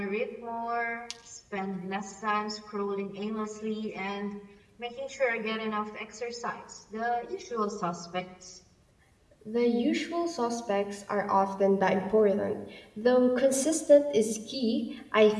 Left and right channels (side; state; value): both; identical; correlation 1.00